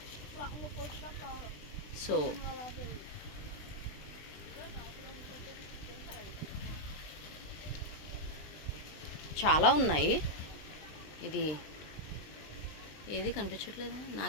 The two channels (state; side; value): late; right; 20 ms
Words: సో చాలా ఉన్నాయి. ఇది ఏది కనిపించట్లేదా?